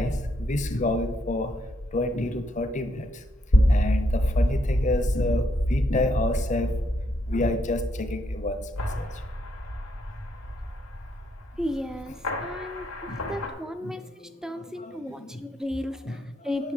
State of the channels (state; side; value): normal; both; correlation 0.76